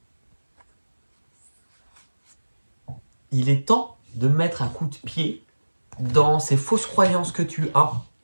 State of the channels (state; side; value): inverted; both; correlation -1.00